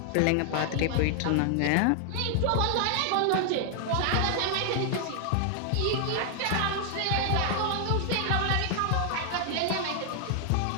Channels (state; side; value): different; both; correlation 0.00